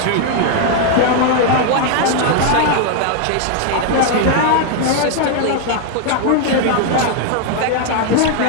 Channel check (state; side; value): different; both; correlation 0.01